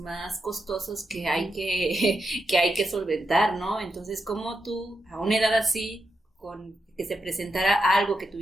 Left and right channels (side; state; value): both; normal; correlation 0.86